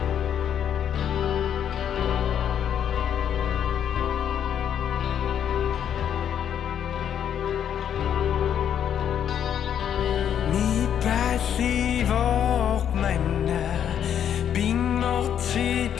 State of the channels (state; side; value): quieter; right; 9.2 dB